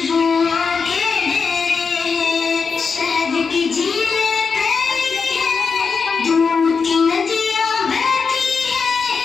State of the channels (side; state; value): right; quieter; 5.3 dB